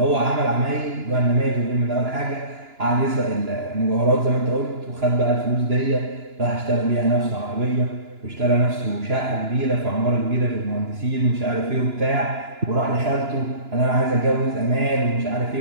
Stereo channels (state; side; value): late; left; 2.9 ms